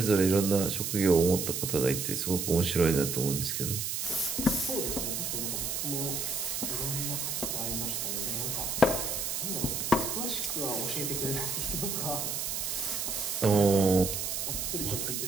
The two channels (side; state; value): right; noise; hiss, 2 dB below the sound